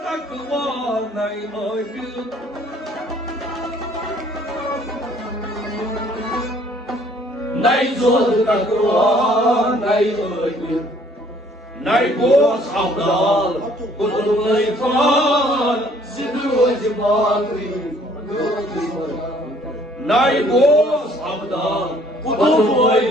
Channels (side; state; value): both; normal; correlation 0.59